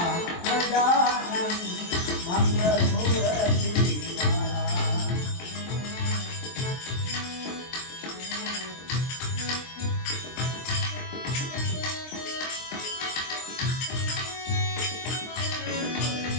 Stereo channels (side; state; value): right; late; 23 ms